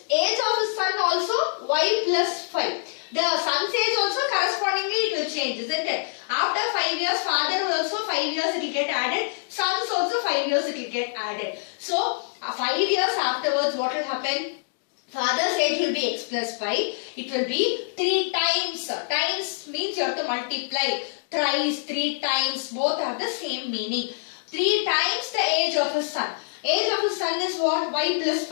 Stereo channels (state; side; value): silent; right; digital silence